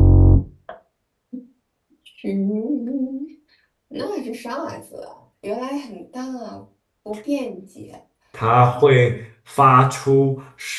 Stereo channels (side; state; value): both; identical; correlation 1.00